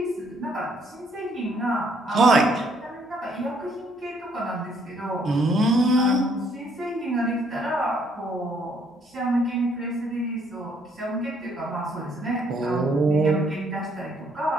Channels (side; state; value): both; normal; correlation 0.67